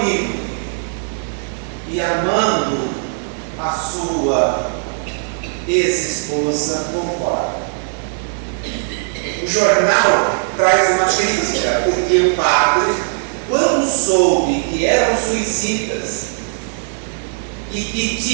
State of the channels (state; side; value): silent; left; digital silence